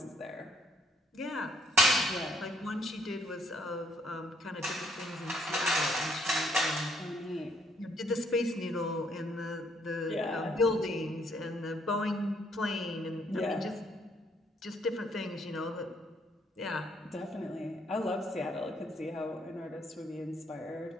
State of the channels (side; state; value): both; normal; correlation 0.68